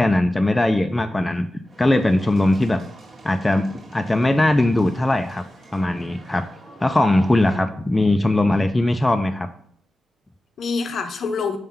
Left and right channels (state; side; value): normal; both; correlation 0.95